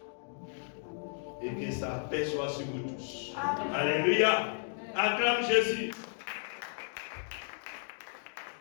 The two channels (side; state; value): right; silent; 55 dB below the other